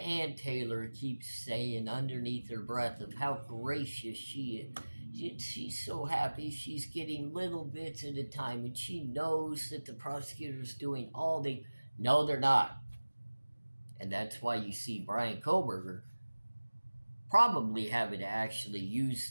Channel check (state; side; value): inverted; both; correlation -1.00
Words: Taylor keeps saying underneath her breath of how gracious she is. She's so happy she's getting little bits at a time, and she knows that the prosecutor's doing all they... No, they're not. And that's why you see Bryan Kohberger probably having to actually